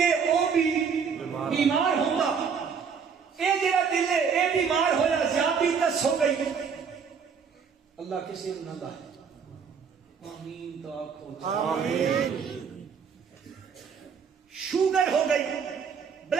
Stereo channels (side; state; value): left; quieter; 6.3 dB